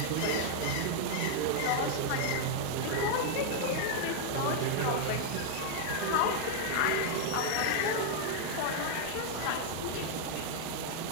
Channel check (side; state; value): both; different; correlation 0.00